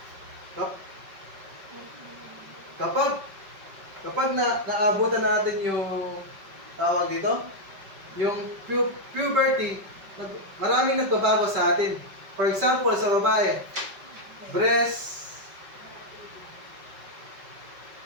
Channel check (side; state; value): left; late; 5.2 ms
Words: kapag naabutan natin yung tawag dito, yung puberty, maraming nagbabago sa atin. For example, sa babae, breast,